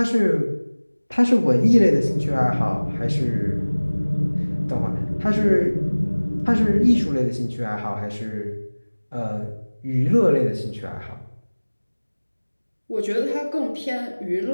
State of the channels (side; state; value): both; inverted; correlation -1.00